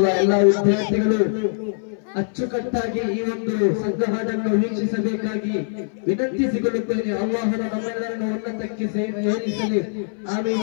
ಎಲ್ಲ ವಿದ್ಯಾರ್ಥಿಗಳು ಅಚ್ಚುಕಟ್ಟಾಗಿ ಈ ಒಂದು ಸಂಘಹಾಡನ್ನು ವೀಕ್ಷಿಸಬೇಕಾಗಿ ವಿನಂತಿಸಿಕೊಳ್ಳುತ್ತೇನೆ. ಅಲ್ಲಾಹನ ನಮ್ಮೆಲ್ಲರನ್ನು ಉನ್ನತಕ್ಕೆ ಏರಿಸಲಿ. ಆಮೀನ್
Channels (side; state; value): right; silent; 60 dB below the other